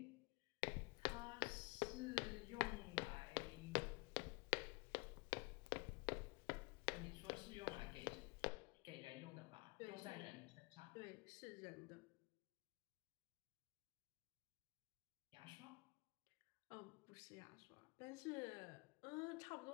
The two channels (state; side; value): quieter; right; 28.5 dB